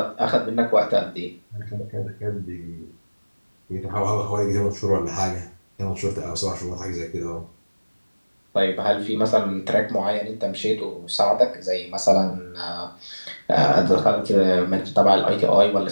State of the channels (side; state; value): both; inverted; correlation -1.00